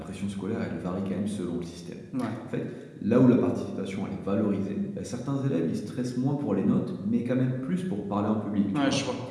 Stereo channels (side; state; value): both; identical; correlation 1.00